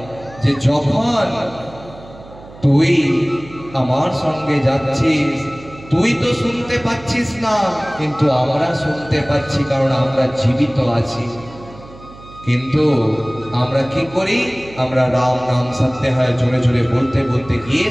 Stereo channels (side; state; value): right; noise; hum, 19 dB below the sound